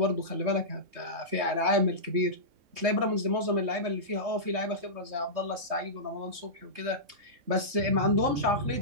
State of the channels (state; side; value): late; left; 3.2 ms